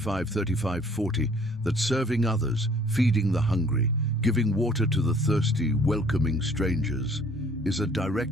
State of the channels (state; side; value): normal; both; correlation 0.56